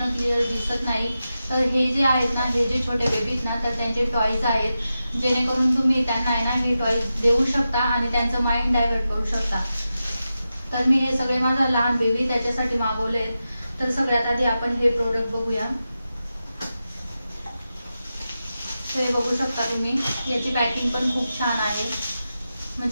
क्लिअर दिसत नाही. तर हे जे आहेत ना, हे जे छोटे बेबीज ना, तर त्यांचे टॉयज आहेत, जेणेकरून तुम्ही त्यांना आहे ना हे टॉयज देऊ शकता आणि त्यांचं माइंड डायव्हर्ट करू शकता. तर मी हे सगळे माझा लहान बेबी त्याच्यासाठी मागवले. तर सगळ्यात आधी आपण हे प्रोडक्ट बघूया. तर हे बघू शकता तुम्ही, याची पॅकिंग पण खूप छान आहे,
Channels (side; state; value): both; inverted; correlation -0.91